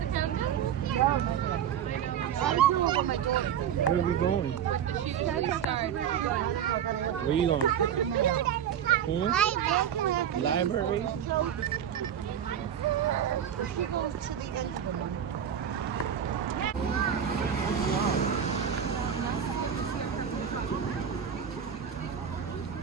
Where are we going? Where you going? Library?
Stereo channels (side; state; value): left; quieter; 9.0 dB